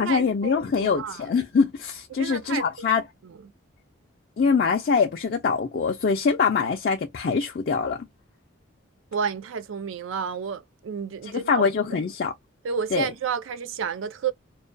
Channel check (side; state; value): right; quieter; 3.4 dB